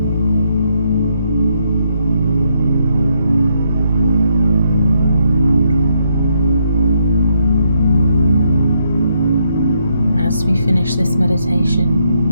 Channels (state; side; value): inverted; both; correlation -0.76